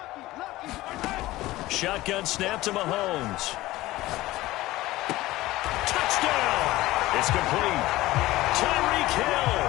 Shotgun snap to Mahomes. Touchdown! It's complete. Tyreek Hill,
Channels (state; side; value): quieter; right; 17.6 dB